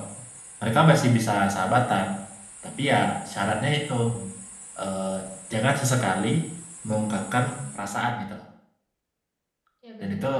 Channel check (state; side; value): identical; both; correlation 1.00